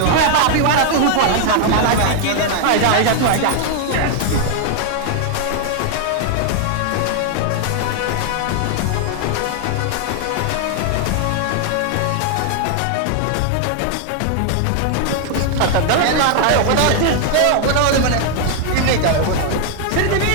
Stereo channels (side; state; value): both; different; correlation 0.00